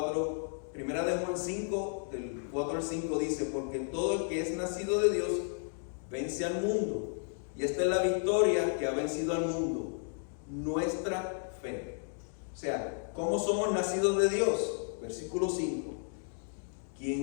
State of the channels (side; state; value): right; silent; 56 dB below the other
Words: 5, del 4 al 5 dice, porque todo el que es nacido de Dios vence al mundo. Y esta es la victoria que ha vencido al mundo, nuestra fe. O sea, ¿cómo somos nacidos de Dios? Versículo 5.